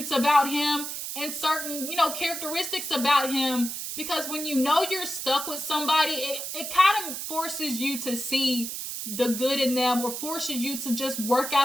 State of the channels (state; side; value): noise; right; hiss, 5 dB below the sound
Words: about him and certain, characteristics about him. Because when you're stuck with somebody, it kind of forces you to see the good in them, or forces you to just work